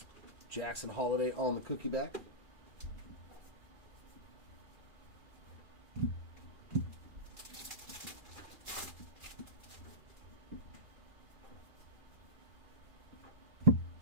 Jackson Holiday on the cookie back.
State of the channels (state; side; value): late; left; 2.4 ms